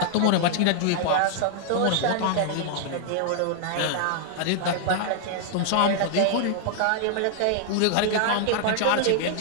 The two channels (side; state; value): both; different; correlation -0.01